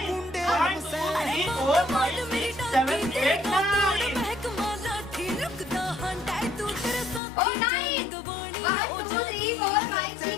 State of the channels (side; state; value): right; drops out; at 7.2 s